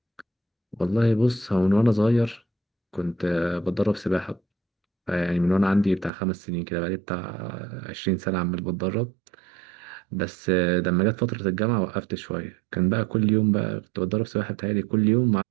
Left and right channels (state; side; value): drops out; left; at 6.1 s